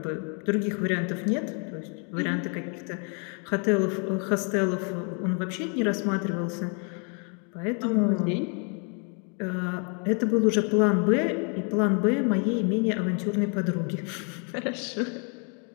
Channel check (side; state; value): right; quieter; 38.4 dB